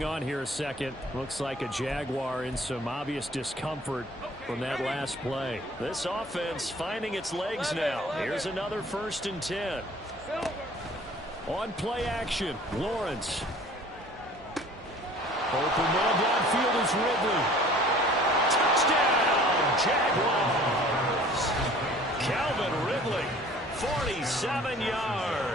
on here a second. Looks like a Jaguar in some obvious discomfort from that last play. This offense finding its legs now. Here's another 1st and 10. On play action, Lawrence. Open man downfield is Ridley. Touchdown, Jaguars. Calvin Ridley. 47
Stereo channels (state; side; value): normal; both; correlation 0.50